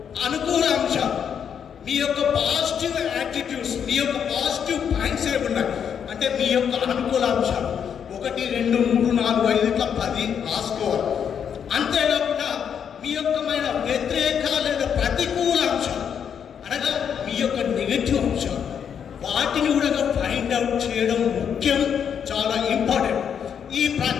అనుకూల అంశాలు, మీ యొక్క పాజిటివ్ యాటిట్యూడ్స్, మీ యొక్క పాజిటివ్ పాయింట్స్ ఏమున్నాయి అంటే మీ యొక్క అనుకూల అంశాలు 1, 2, 3, 4, 5 ఇట్లా 10 రాసుకోవాలి. అంతేకాకుండా మీ యొక్కమైన వ్యతిరేక లేదా ప్రతికూల అంశాలు అనగా మీ యొక్క నెగటివ్ అంశాలు, వాటిని కూడా ఫైండ్ అవుట్ చేయడం ముఖ్యం, చాలా ఇంపార్టెంట్. ఈ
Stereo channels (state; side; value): quieter; right; 7.9 dB